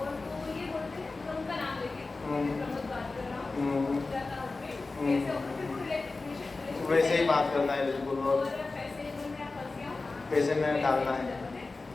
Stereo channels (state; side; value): quieter; right; 3.6 dB